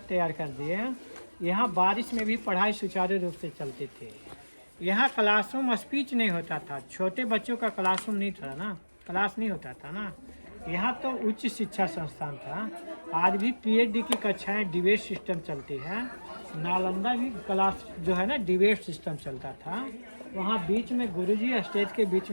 तैयार कर दिए, यहाँ बारिश में भी पढ़ाई सुचारू रूप से चलती थी। यहाँ क्लासरूम स्पीच नहीं होता था, छोटे बच्चों का क्लासरूम नहीं था ना, क्लास नहीं होता था ना। यहाँ तो उच्च शिक्षा संस्थान था। आज भी पीएचडी की कक्षाएं डिबेट सिस्टम चलती है। नालंदा भी क्लास जो है ना डिबेट सिस्टम चलता था। वहाँ बीच में गुरुजी, स्टेज के बीच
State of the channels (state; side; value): inverted; both; correlation -1.00